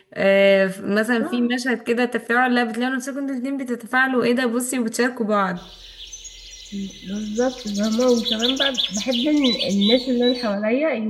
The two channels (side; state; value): both; identical; correlation 1.00